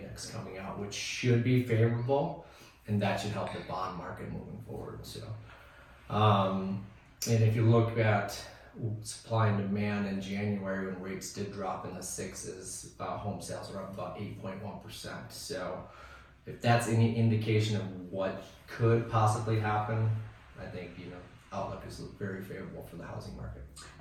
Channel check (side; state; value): both; identical; correlation 1.00